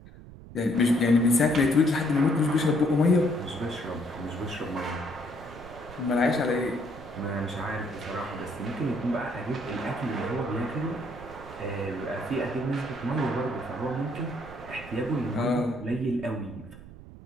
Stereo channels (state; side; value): noise; right; rumble, 17 dB below the sound